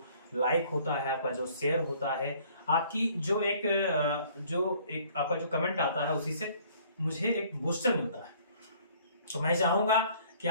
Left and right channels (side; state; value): both; inverted; correlation -0.57